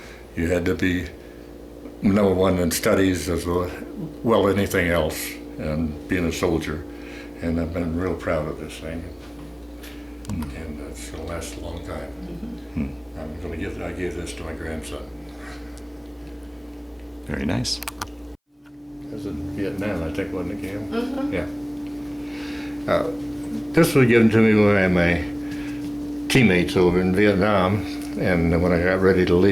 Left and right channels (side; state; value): both; identical; correlation 1.00